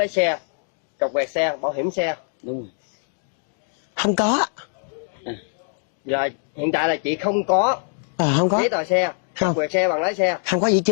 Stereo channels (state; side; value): silent; right; 63 dB below the other